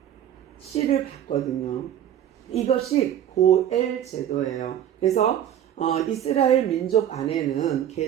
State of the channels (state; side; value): quieter; left; 10.5 dB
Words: 씨를 받거든요. 이것이 고엘 제도예요. 그래서 이스라엘 민족 안에는